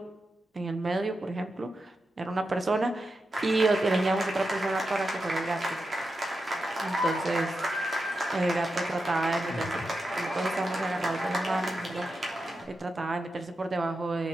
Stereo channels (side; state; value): both; normal; correlation 0.89